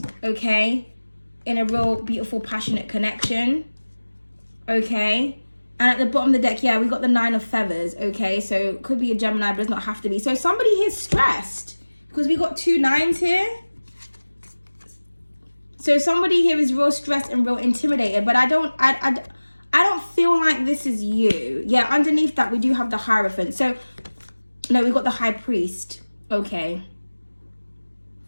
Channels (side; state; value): both; inverted; correlation -1.00